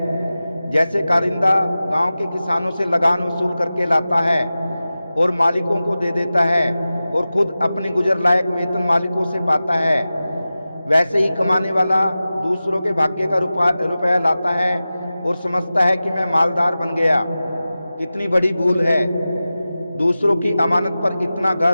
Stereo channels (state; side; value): inverted; both; correlation -0.95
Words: जैसे कारिंदा गांव के किसानों से लगान वसूल करके लाता है और मालिकों को दे देता है और खुद अपनी गुजर लायक वेतन मालिकों से पाता है, वैसे ही कमाने वाला दूसरों के भाग्य का रुपया लाता है और समझता है कि मैं मालदार बन गया। कितनी बड़ी भूल है। दूसरों की अमानत पर इतना